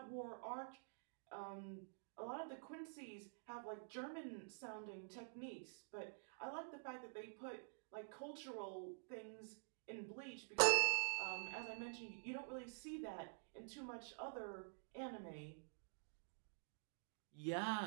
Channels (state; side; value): silent; left; digital silence